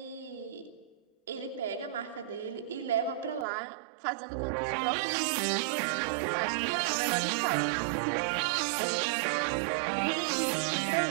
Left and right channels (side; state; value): left; drops out; at 3.5 s